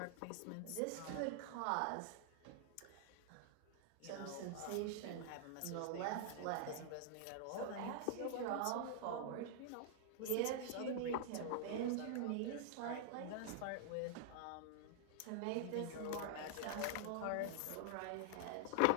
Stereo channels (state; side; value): different; both; correlation -0.01